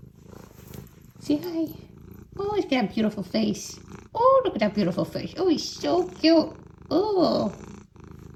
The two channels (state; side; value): identical; both; correlation 1.00